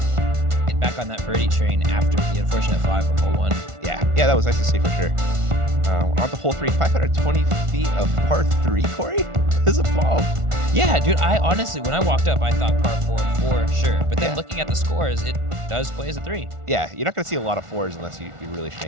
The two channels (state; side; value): late; left; 1.4 ms